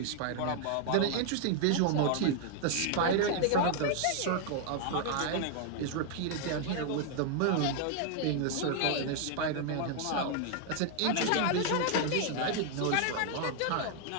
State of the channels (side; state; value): both; different; correlation 0.00